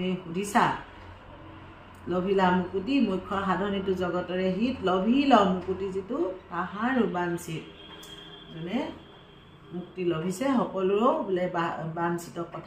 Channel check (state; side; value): identical; both; correlation 1.00